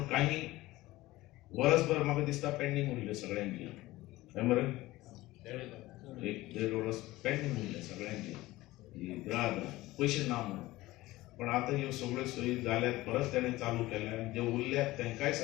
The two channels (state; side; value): quieter; right; 18.2 dB